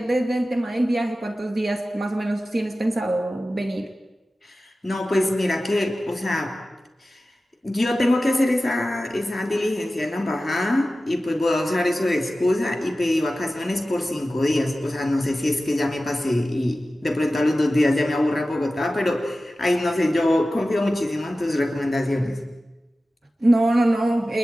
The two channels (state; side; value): normal; both; correlation 0.95